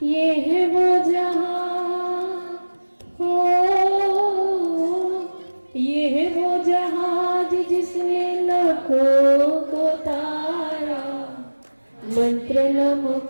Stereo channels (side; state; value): both; inverted; correlation -1.00